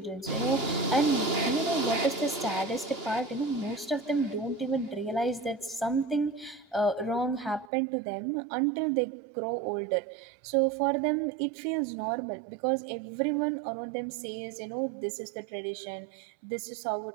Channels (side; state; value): left; drops out; at 7.7 s